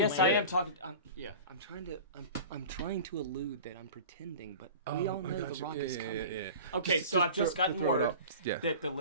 Yes, bit? I am talking. I'm trying to allude that I'm pretending, but we all know the Rock is coming. Yeah. Okay, so I've just gotten throw it word up. Yeah. that the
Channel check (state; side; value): inverted; both; correlation -0.37